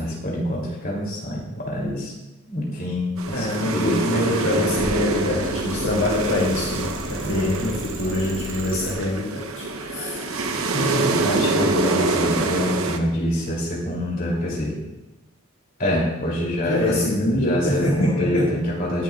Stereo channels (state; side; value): normal; both; correlation 0.45